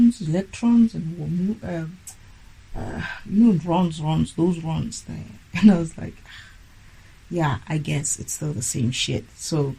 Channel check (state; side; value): identical; both; correlation 1.00